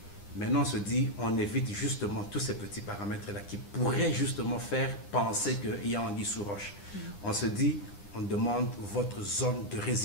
Maintenant, on se dit, on évite justement tous ces petits paramètres-là qui pourraient justement faire penser qu'il y a anguille sous roche. On se dit, on demande votre zone de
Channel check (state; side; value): late; right; 9.9 ms